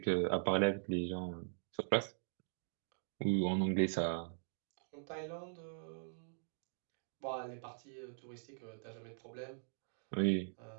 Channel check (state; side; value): silent; left; digital silence